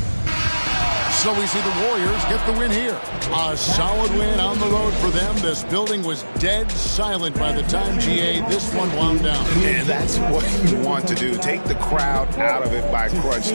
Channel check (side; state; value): both; inverted; correlation -1.00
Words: So we see the Warriors get the win here. A solid win on the road for them. This building was dead silent by the time, GA, this one wound down. And that's what you want to do. Take the crowd out of it by crunch